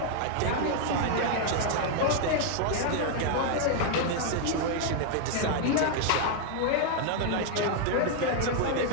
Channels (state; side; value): different; both; correlation 0.00